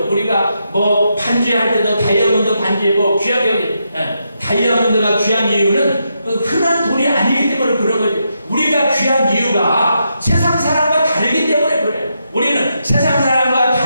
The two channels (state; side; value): inverted; both; correlation -0.82